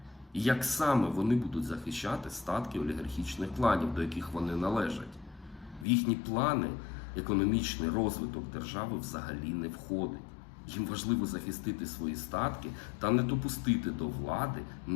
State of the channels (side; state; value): right; drops out; at 5.9 s